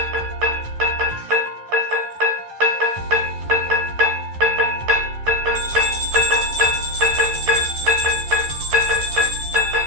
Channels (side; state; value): left; late; 11 ms